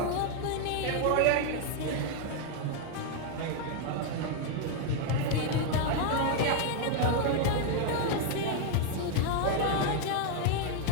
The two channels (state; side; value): different; both; correlation 0.01